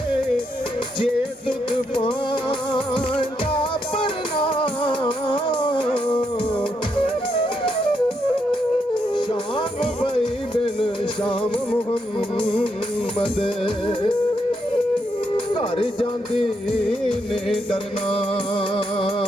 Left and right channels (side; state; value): both; normal; correlation 0.79